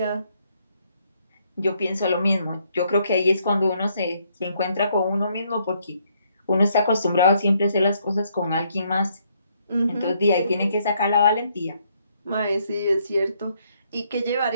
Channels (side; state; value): both; inverted; correlation -0.72